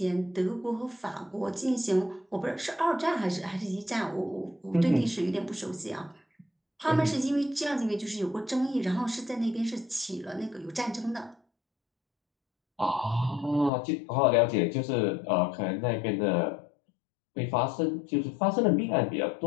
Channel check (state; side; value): drops out; right; at 13.7 s